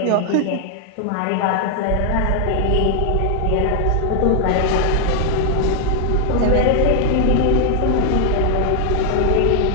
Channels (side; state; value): both; different; correlation 0.00